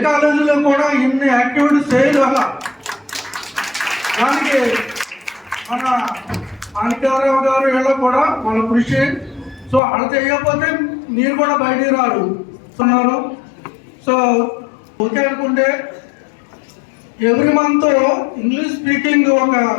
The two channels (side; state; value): right; drops out; at 9.8 s